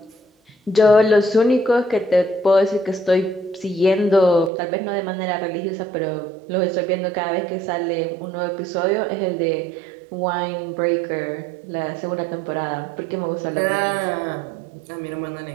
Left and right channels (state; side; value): drops out; left; at 4.5 s